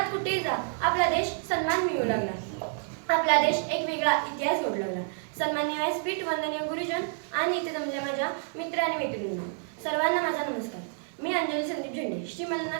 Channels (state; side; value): silent; left; 59 dB below the other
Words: कुठेही जा आपला देश सन्मान मिळू लागला, आपला देश एक वेगळा इतिहास जोडू लागला. सन्माननीय व्यासपीठ, वंदनीय गुरुजन आणि इथे जमलेल्या माझ्या मित्र आणि मैत्रिणींनो, सर्वांना माझा नमस्कार. मी अंजली संदीप झेंडे, श्री